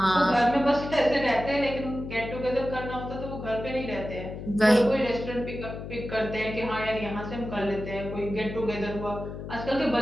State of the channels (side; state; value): left; noise; hum, 9 dB below the sound